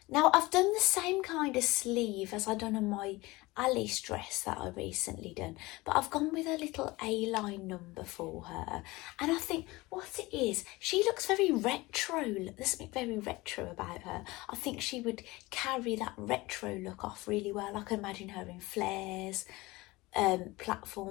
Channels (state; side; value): quieter; right; 21.3 dB